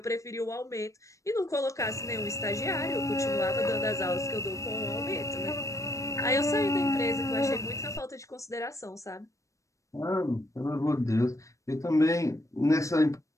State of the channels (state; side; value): late; right; 0.15 ms